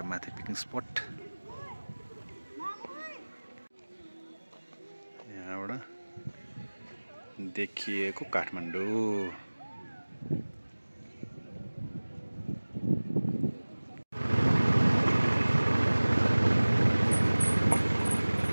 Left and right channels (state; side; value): inverted; both; correlation -1.00